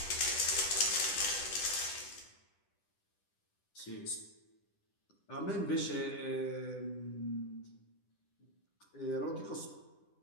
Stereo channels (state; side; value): late; right; 10 ms